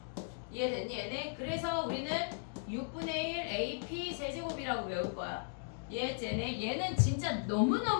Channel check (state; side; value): silent; right; digital silence